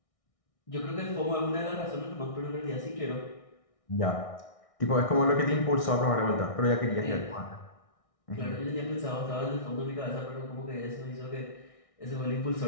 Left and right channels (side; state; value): right; late; 1.6 ms